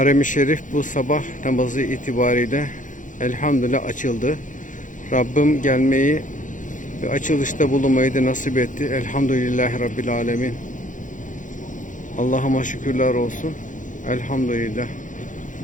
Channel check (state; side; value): late; right; 0.37 ms